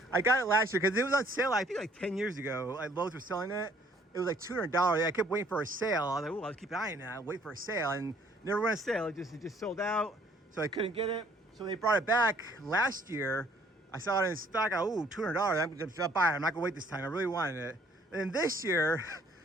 I got it last year because it was on sale, I think like 10 years ago. Lowe's were selling it. It was like $200. I kept waiting for a sale. I was like, oh, I'll keep eyeing that. Wait for a sale. And never went on sale. It just sold out. So I couldn't get it. So they brought it back last year. I saw it in stock. Oh, $200. I'm going to buy it. I'm not going to wait this time. I really wanted it. And then this year,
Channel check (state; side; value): normal; both; correlation 0.61